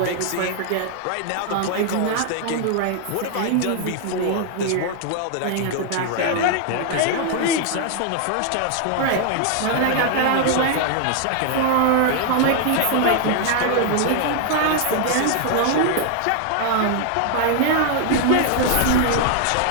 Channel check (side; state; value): both; different; correlation 0.00